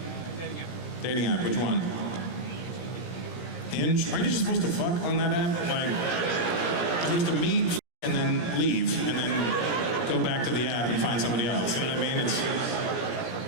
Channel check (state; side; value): late; right; 17 ms